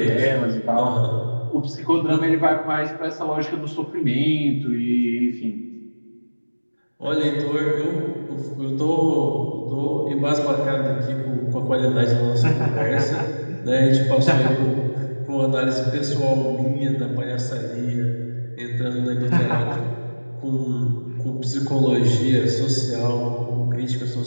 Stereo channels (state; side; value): inverted; both; correlation -1.00